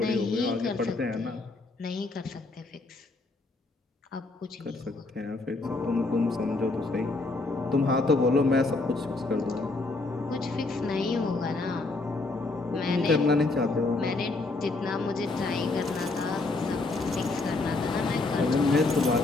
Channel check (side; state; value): right; quieter; 3.4 dB